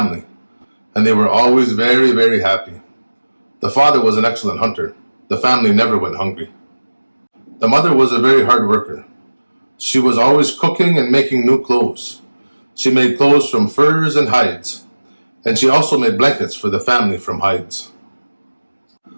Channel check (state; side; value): inverted; both; correlation -1.00